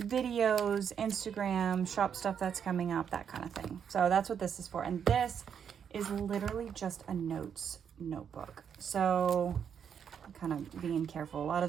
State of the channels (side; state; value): left; quieter; 7.8 dB